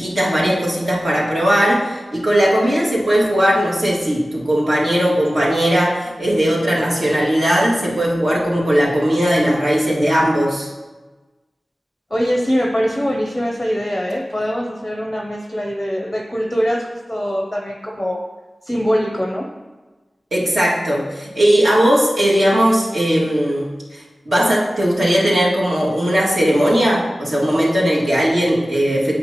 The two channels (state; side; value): normal; both; correlation 0.95